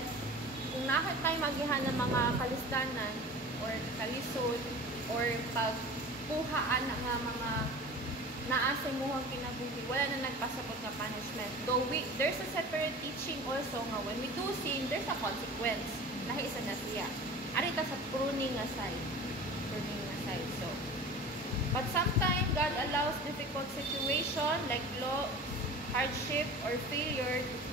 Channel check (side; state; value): both; normal; correlation 0.37